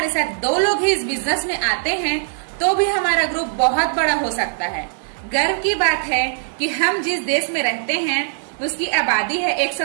साथ 2 लोग ही इस बिजनेस में आते हैं तो भी हमारा ग्रुप बहुत बड़ा हो सकता है। गर्व की बात है कि हम जिस देश में रहते हैं उसकी आबादी है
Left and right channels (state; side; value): silent; left; digital silence